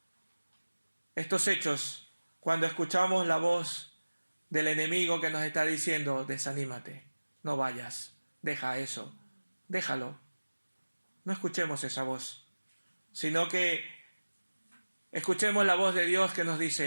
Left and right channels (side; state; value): both; inverted; correlation -1.00